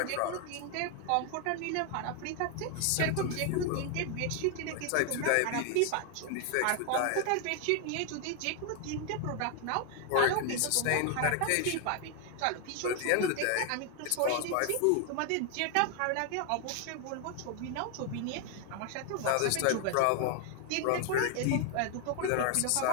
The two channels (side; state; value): both; different; correlation 0.00